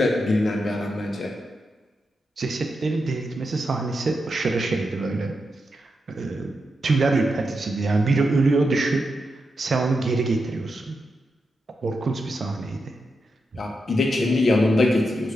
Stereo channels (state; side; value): normal; both; correlation 0.86